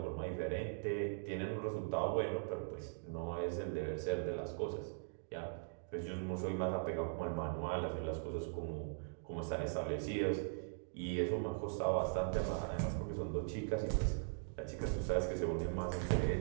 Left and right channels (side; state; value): left; silent; digital silence